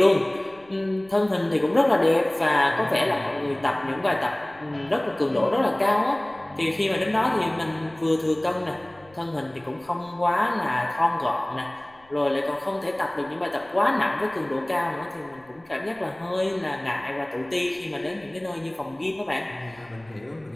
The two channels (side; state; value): left; noise; rumble, 30 dB below the sound